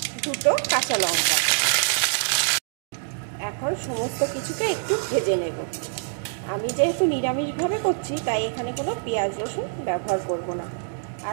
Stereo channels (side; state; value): left; silent; digital silence